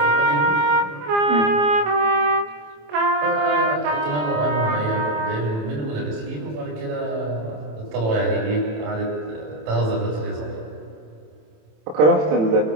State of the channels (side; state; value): left; late; 27 ms